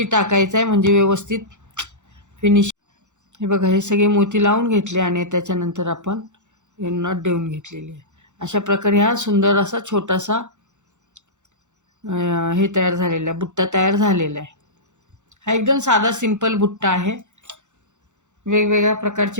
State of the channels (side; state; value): left; late; 0.84 ms